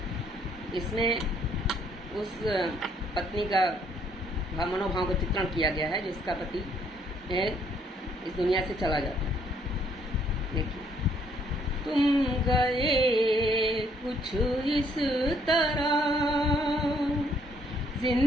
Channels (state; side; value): normal; both; correlation 0.67